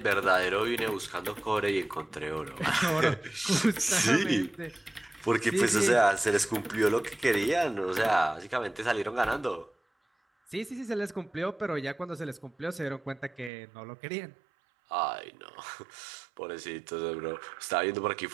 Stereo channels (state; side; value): drops out; left; at 13.5 s